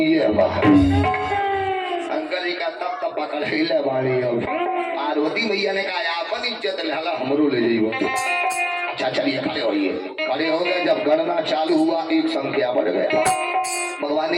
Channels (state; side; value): identical; both; correlation 1.00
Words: है। शंकर जी का तब पकड़ ले बाड़ी। अब पार्वती मैया ने कहा अपन इज्जत लेला हमरो ले जाइयो। अच्छा चलिए खड़े होइए। खड़े हो गए। जब गणना चालू हुआ एक संख्या बढ़ गया। भगवान